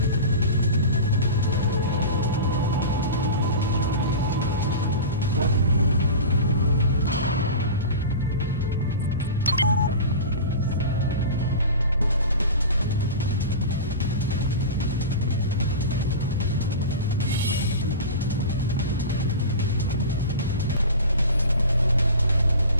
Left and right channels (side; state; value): both; inverted; correlation -0.31